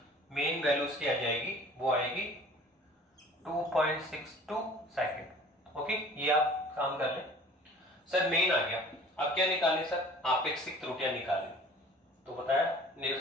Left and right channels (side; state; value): both; normal; correlation 0.48